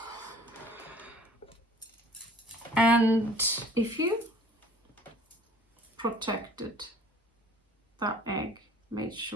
And if you protected that egg, made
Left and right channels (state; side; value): normal; both; correlation 0.51